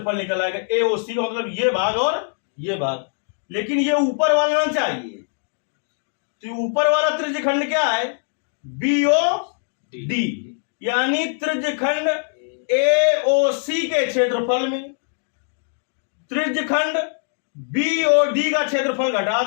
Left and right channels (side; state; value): right; silent; digital silence